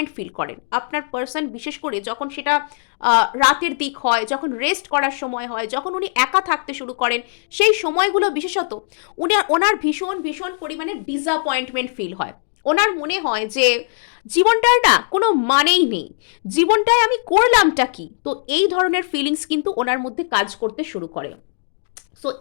ফিল করেন। আপনার পার্সন বিশেষ করে যখন সেটা রাতের দিক হয়, যখন রেস্ট করার সময় হয়, যখন উনি একা থাকতে শুরু করেন, সেই সময়গুলো বিশেষত ওনার ভীষণ ভীষণ পরিমাণে ডিসঅ্যাপয়েন্টমেন্ট ফিল হয়। ওনার মনে হয় যে জীবনটার না কোনো মানেই নেই, জীবনটায় আমি করলামটা কি। তো এই ধরনের ফিলিংস কিন্তু ওনার মধ্যে কাজ করতে শুরু করে। সো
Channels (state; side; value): silent; right; digital silence